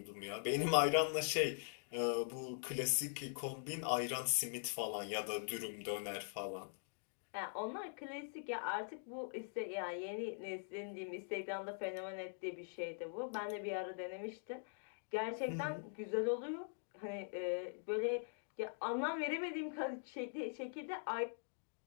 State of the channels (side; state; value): right; silent; digital silence